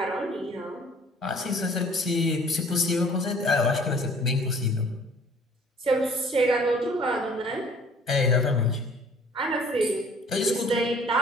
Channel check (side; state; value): both; normal; correlation 0.54